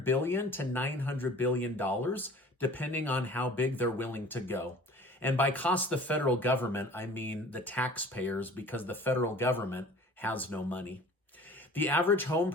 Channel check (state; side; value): normal; both; correlation 0.46